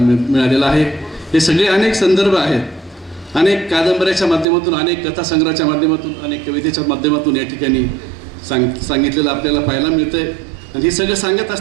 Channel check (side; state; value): left; drops out; at 4.5 s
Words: आहे. हे सगळे अनेक संदर्भ आहेत, अनेक कादंबऱ्याच्या माध्यमातून, अनेक कथासंग्रहाच्या माध्यमातून, अनेक कवितेच्या माध्यमातून या ठिकाणी सांगितलेलं आपल्याला पाहायला मिळतं आहे. आणि हे सगळं सांगत